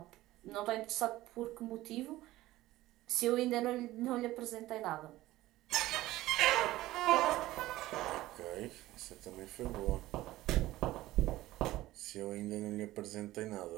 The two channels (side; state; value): left; quieter; 16.6 dB